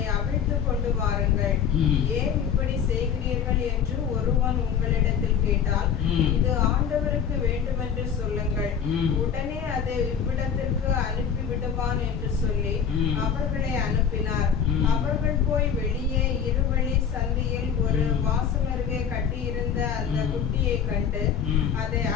அவிழ்த்து கொண்டு வாருங்கள். ஏன் இப்படி செய்கிறீர்கள் என்று ஒருவன் உங்களிடத்தில் கேட்டால், இது ஆண்டவருக்கு வேண்டுமென்று சொல்லுங்கள், உடனே அதை இவ்விடத்திற்கு அனுப்பி விடுவான் என்று சொல்லி அவர்களை அனுப்பினார். அவர்கள் போய் வெளியே இருவழி சந்தியில் ஒரு வாசலருகே கட்டியிருந்த அந்த குட்டியை கண்டு அதை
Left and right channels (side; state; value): right; quieter; 7.5 dB